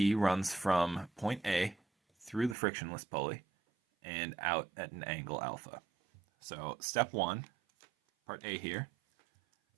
runs from point A through the frictionless pulley and out at an angle alpha. So step 1, part A here,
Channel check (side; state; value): left; drops out; at 2.6 s